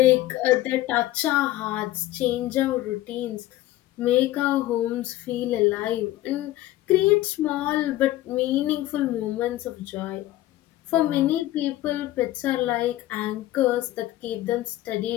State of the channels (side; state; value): right; quieter; 15.5 dB